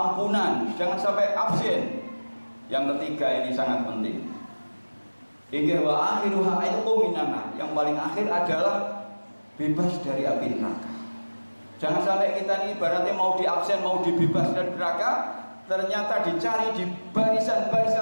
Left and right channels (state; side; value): inverted; both; correlation -1.00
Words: jangan sampai absen. Yang ketiga ini sangat penting. Hingga wa akhiruha itu minana, yang paling akhir adalah bebas dari api neraka. Jangan sampai kita ini ibaratnya mau diabsen, mau dibebas dari neraka, ternyata dicari di